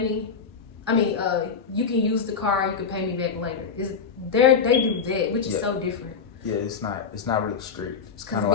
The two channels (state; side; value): quieter; right; 5.7 dB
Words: I mean, you can use the car, you can pay me back later. They do that, which is so different. Yeah, it's not really strict. It's kind of